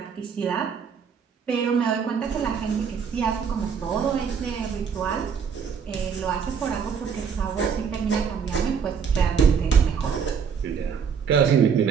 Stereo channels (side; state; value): left; quieter; 6.7 dB